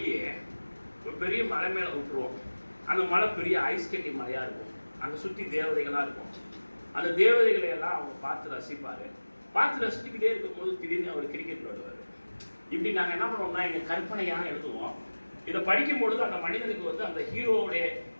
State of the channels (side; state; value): both; inverted; correlation -1.00